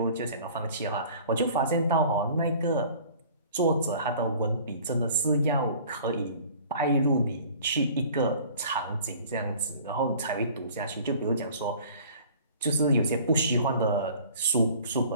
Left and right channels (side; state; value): both; inverted; correlation -0.48